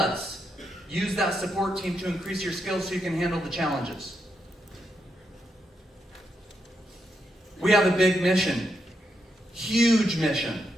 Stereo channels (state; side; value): normal; both; correlation 0.82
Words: Use that support team to increase your skills so you can handle the challenges." We have a big mission. Huge mission.